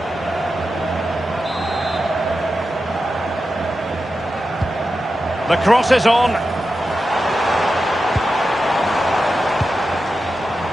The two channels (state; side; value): normal; both; correlation 0.91